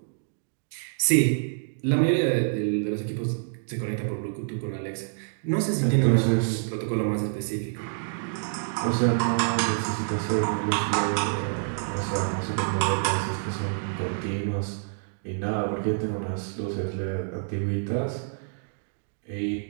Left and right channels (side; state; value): left; silent; digital silence